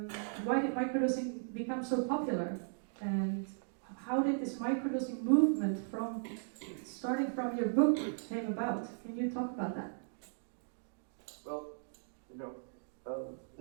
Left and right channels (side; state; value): left; silent; digital silence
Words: why did microdosing become so popular? And how did this microdosing movement from starting from your book came about? Can you talk about that? Well,